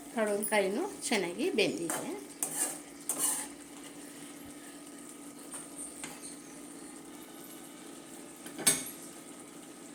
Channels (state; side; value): identical; both; correlation 1.00